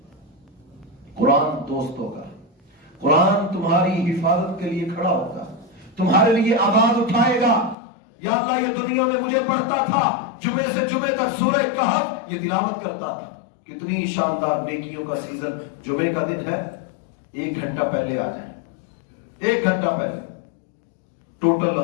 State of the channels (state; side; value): drops out; right; at 7.8 s